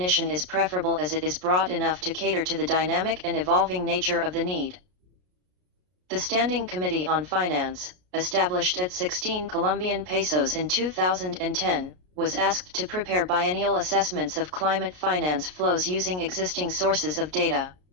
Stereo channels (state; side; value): late; left; 33 ms